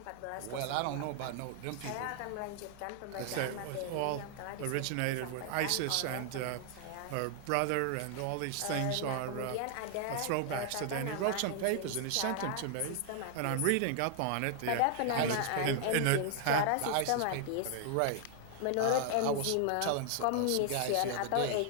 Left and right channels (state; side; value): different; both; correlation 0.00